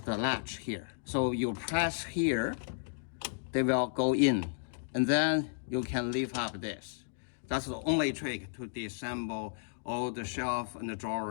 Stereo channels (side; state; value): right; silent; digital silence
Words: latch here. So you press here, they will go in, and then you can lift up this. That's the only trick to disassemble all the shelf and the